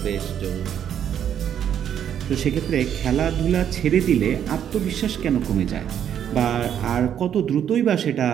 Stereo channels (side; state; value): left; quieter; 9.4 dB